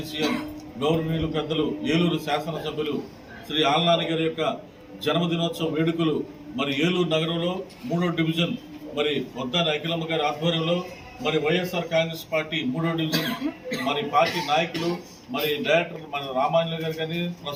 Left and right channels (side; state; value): both; identical; correlation 1.00